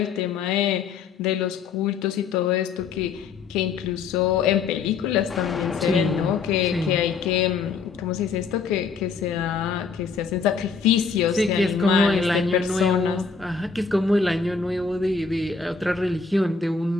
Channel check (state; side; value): quieter; right; 5.3 dB